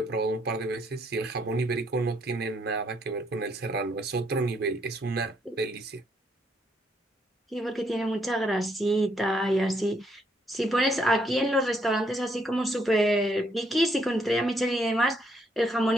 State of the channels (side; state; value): both; normal; correlation 0.71